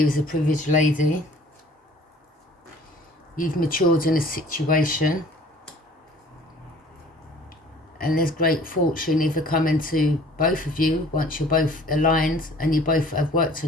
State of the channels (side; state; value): both; normal; correlation 0.51